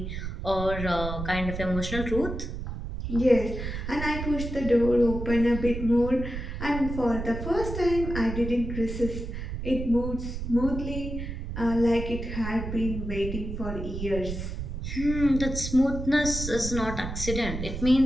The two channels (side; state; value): right; noise; rumble, 6 dB below the sound